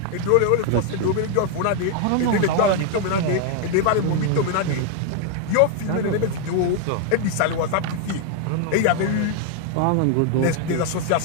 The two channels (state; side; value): different; both; correlation 0.00